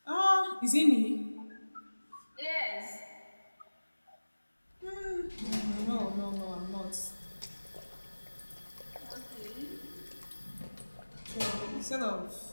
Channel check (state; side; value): inverted; both; correlation -1.00